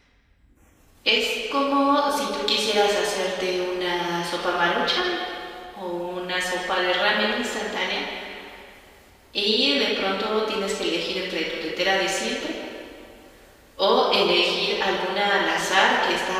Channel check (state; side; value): identical; both; correlation 1.00